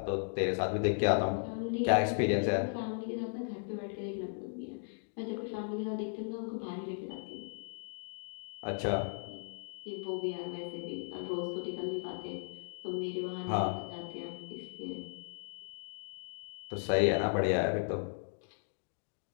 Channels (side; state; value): right; silent; digital silence